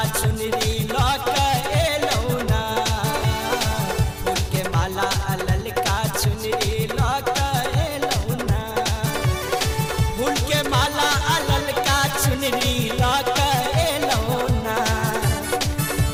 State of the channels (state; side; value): identical; both; correlation 1.00